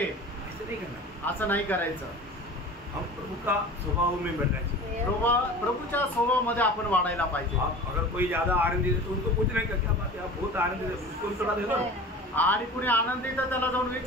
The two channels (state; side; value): normal; both; correlation 0.38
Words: ऐसे नहीं करना। असं नाही करायचं। हम प्रभु का स्वभाव में बनना चाहिए। प्रभूच्या स्वभावामध्ये आपण वाढायला पाहिजे। आप अगर कोई ज्यादा आनंदित है तो उनको पूछने का क्या बात है, आप बहुत आनंदित है, उसको भी थोड़ा दे दो। आणि कुणी आनंदित आहे त्याला जाऊन